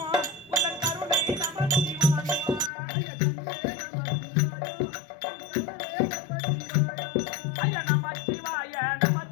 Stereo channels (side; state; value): right; drops out; at 2.7 s